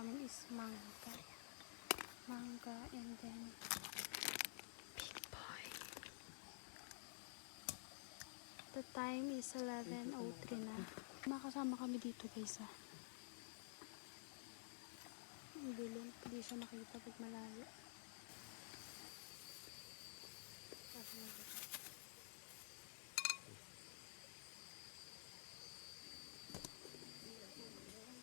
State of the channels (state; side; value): silent; right; digital silence